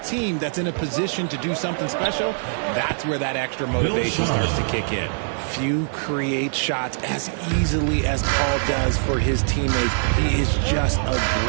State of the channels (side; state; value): left; silent; digital silence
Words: team that's in a position to do something special, that's where that extra motivation starts to kick in. Few create shots as easily as Paul does for his teammates. He is just a